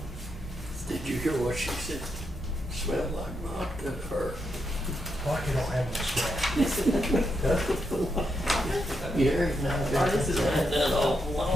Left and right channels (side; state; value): both; normal; correlation 0.81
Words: Did you hear what she said? Smelled like vodka to her. Vodka don't have no smell. Yeah, now Oh, this is that right. awful